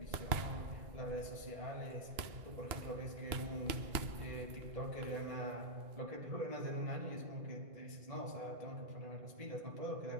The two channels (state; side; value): late; left; 2.8 ms